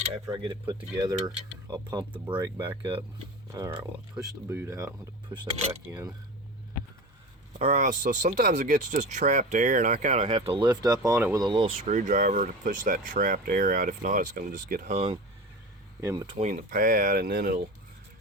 after I get it put together, I'll pump the brake back up. Alright, well, I push the boot out. I'm going to push that back in. Alright, so sometimes it gets just trapped air, and I kind of have to lift up on it with a little screwdriver to push that trapped air out. If not, it's going to just get hung in between the pad, and then it'll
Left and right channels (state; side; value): normal; both; correlation 0.30